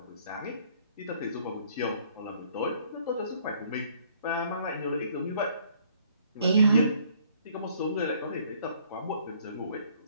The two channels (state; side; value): inverted; both; correlation -0.62